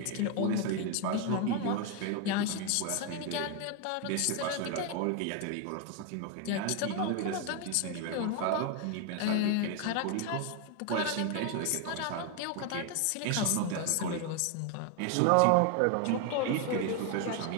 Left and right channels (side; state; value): both; different; correlation 0.01